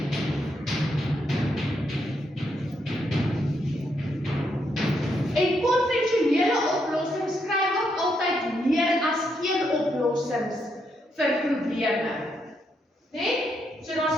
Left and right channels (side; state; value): both; normal; correlation 0.78